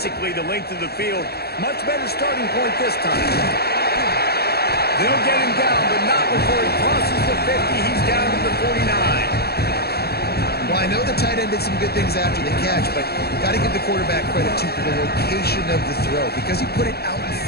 the length of the field. Much better starting point this time. They'll get him down, but not before he crosses the 50. He's down to the 49. Well, I know the tight end did some good things after the catch, but you've got to give the quarterback credit to the location of the throw. Because he put it out in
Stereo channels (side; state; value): right; late; 0.46 ms